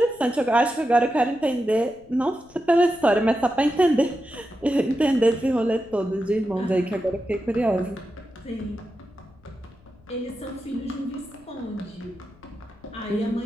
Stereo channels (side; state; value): left; noise; rumble, 28 dB below the sound